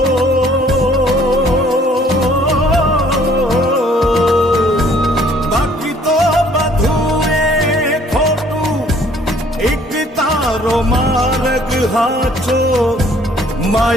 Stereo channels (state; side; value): normal; both; correlation 0.59